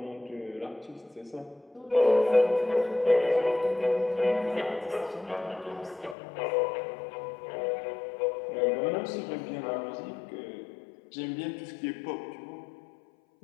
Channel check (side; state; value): right; drops out; at 6.2 s